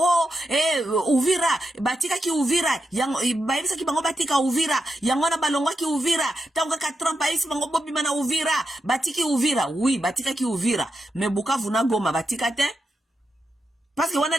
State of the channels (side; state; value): both; normal; correlation 0.86